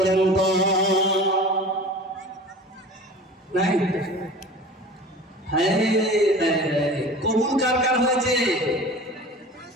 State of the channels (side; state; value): both; normal; correlation 0.38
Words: তো। নাই? কবুল কার কার হয়েছে?